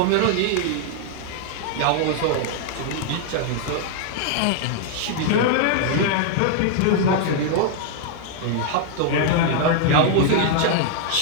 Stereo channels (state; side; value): different; both; correlation 0.00